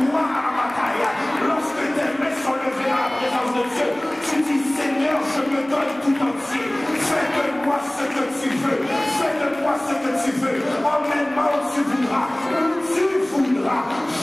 à la bataille. Lorsque tes mains sont levées dans la présence de Dieu, tu dis Seigneur, je me donne tout entier. Fais de moi ce que tu veux. Fais de moi ce que tu veux. Emmène-moi où tu voudras. Où tu voudras.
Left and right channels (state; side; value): noise; right; hum, 29 dB below the sound